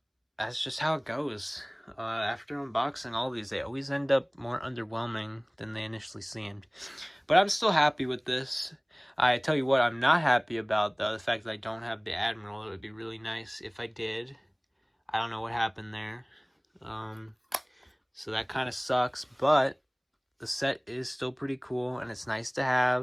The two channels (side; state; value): both; identical; correlation 1.00